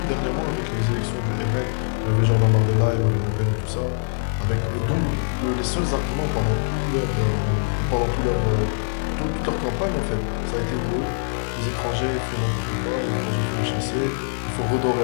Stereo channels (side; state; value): right; silent; 61 dB below the other